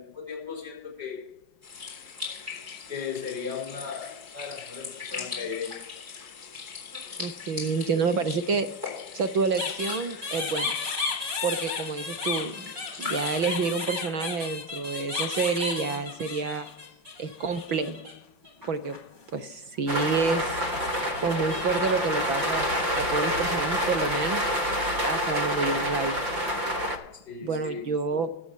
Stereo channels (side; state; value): left; late; 5.8 ms